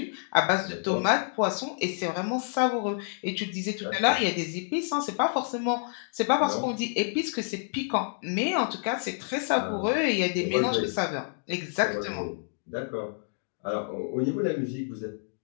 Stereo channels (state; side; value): silent; right; digital silence